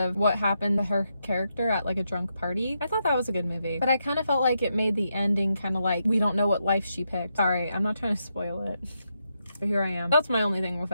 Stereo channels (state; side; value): inverted; both; correlation -0.82